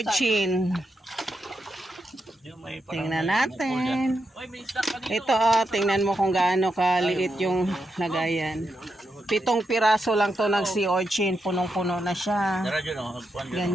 Yung may parang Tingnan may bukol dyan. natin. Oy, may stock ka dito. Ito tingnan mo kung gaano kaliit yung lagayan. 7 piraso lang to ng sea urchin. Punong-puno na siya. Tara dyan o. Hagpuan dyan.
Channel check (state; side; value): normal; both; correlation 0.85